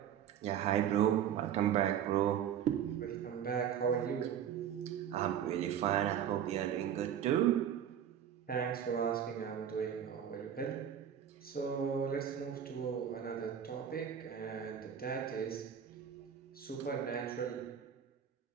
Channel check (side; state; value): left; quieter; 9.1 dB